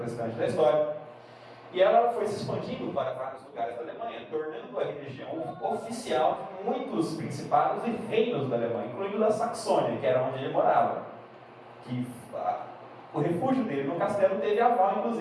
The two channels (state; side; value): identical; both; correlation 1.00